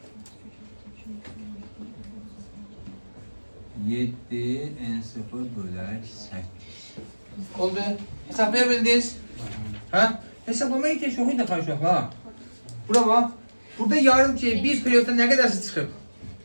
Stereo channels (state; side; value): inverted; both; correlation -1.00